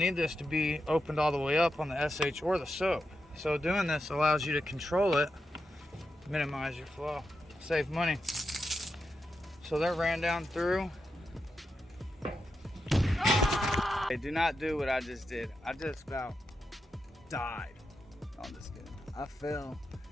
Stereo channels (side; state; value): both; normal; correlation 0.87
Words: this to be opened all the way up on the SH or the soap. So doing this allows you to control it, minimize your flow, save money. So that ran down through. Hey, do not do what I just did. I just about died. No, I'm just kidding. I fell